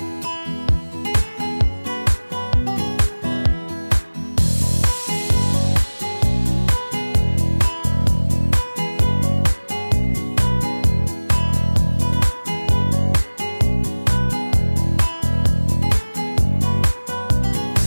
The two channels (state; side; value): inverted; both; correlation -1.00